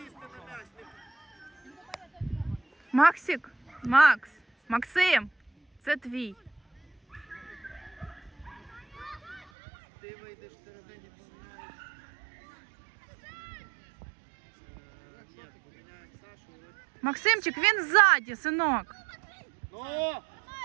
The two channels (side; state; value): left; drops out; at 9.5 s